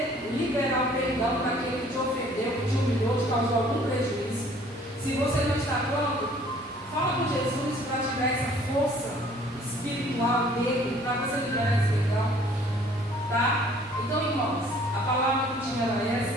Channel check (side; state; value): both; normal; correlation 0.56